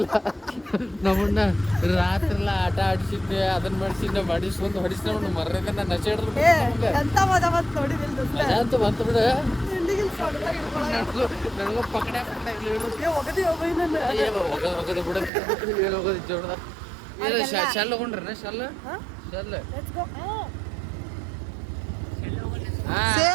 ನಮ್ಮನ್ನ ರಾತ್ರೆಲ್ಲ ಆಟ ಆಡಿಸಿದ್ದೆ, ಅದನ್ನ ಮಾಡಿಸಿದ್ದೆ, ಮಾಡಿಸ್ಕೊಂಡು ಹೊಡಿಸ್ಕೊಂಡು ಮರ್ರದ ನಶೆ ಹಿಡಿದ್ರು. ಎಂತ ಮಜಾ ಬಂತು ನೋಡಿದಿಲ್ಲ ಮಜಾ ಅಂತೂ ಬಂತು ಬಿಡ. ನನಗ ಪಕಡೆ ಒಗದಿ ಬಿಡ ಹೋಗೋದು ಜೋಡದ ಶೆಲ್ ಹೋಗ್ರಿ ಶೆಲ್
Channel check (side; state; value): left; drops out; at 15.3 s